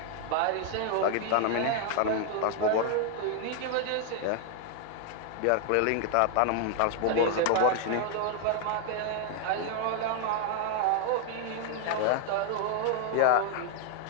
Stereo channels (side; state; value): both; different; correlation 0.00